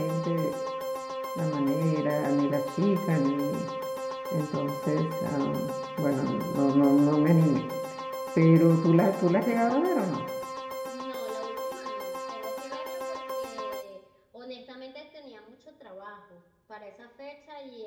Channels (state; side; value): identical; both; correlation 1.00